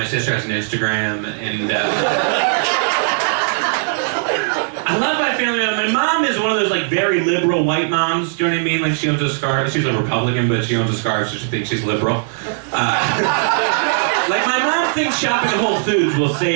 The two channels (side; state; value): left; silent; 67 dB below the other